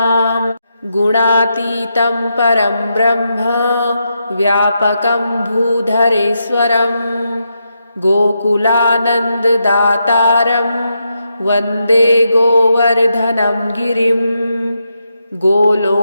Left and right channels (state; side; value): inverted; both; correlation -0.83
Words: गुणातीतं परं ब्रह्म व्यापकं भूधरेश्वरं गोकुलानन्ददातारं वन्दे गोवर्धनं गिरिं